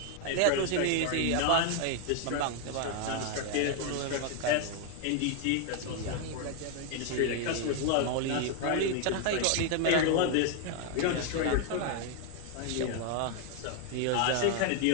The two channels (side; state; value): both; different; correlation 0.01